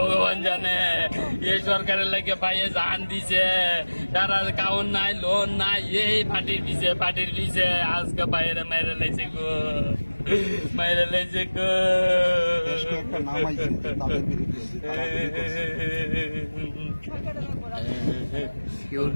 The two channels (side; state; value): both; inverted; correlation -1.00